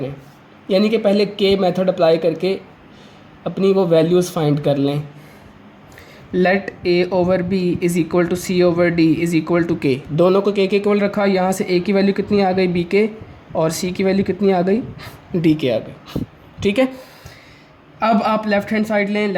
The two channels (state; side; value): identical; both; correlation 1.00